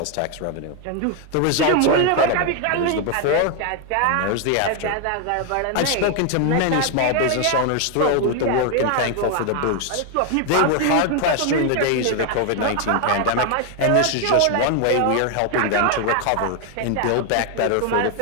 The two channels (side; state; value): both; different; correlation 0.01